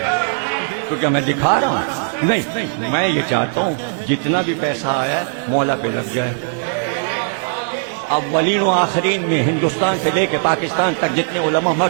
تو کیا میں دکھا رہا ہوں؟ نہیں، میں یہ چاہتا ہوں جتنا بھی پیسہ آیا ہے مولا پہ لگ جائے۔ اولین و آخرین میں ہندوستان سے لے کے پاکستان تک جتنے علماء مر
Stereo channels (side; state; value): left; silent; digital silence